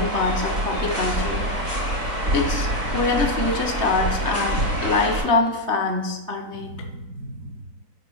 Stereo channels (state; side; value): late; left; 4.0 ms